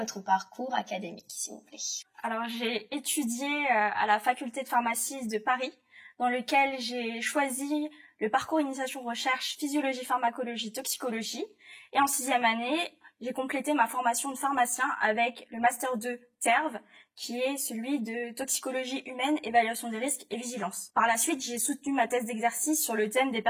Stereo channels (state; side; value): identical; both; correlation 1.00